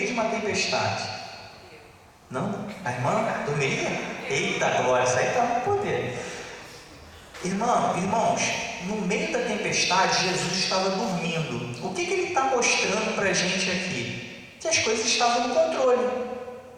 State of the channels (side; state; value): both; identical; correlation 1.00